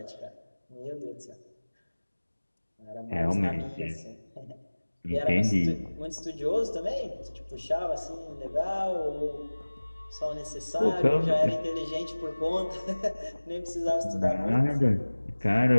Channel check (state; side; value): inverted; both; correlation -1.00